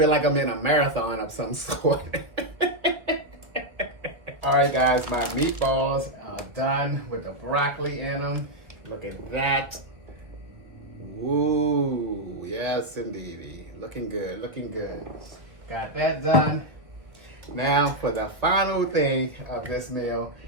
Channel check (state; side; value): late; left; 1.5 ms